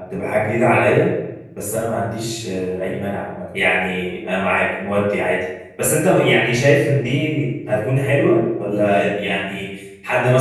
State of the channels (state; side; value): identical; both; correlation 1.00